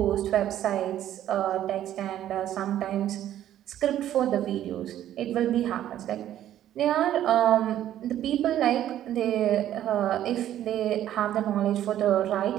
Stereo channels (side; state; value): left; quieter; 11.9 dB